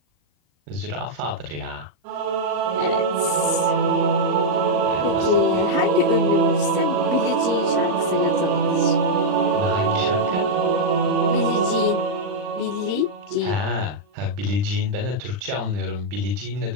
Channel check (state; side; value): late; left; 39 ms